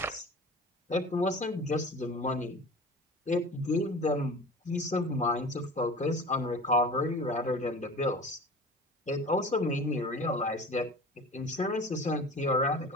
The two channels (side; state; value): both; normal; correlation 0.38